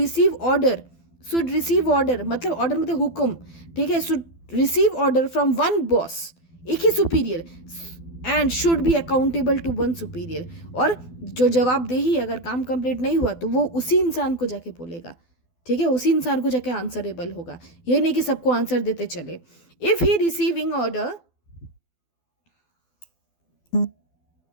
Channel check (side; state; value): right; late; 12 ms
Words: order, मतलब ऑर्डर मतलब हुक्म, ठीक है, should receive order from one boss, एक ही superior, and should be accountable to one superior, और जो जवाबदेही अगर काम कंप्लीट नहीं हुआ तो वो उसी इंसान को जाके बोलेगा, ठीक है, उसी इंसान को जाके आंसरेबल होगा, ये नहीं कि सबको आंसर देते चले। If he receiving